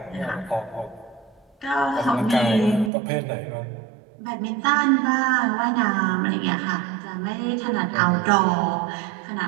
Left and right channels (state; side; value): drops out; left; at 2.9 s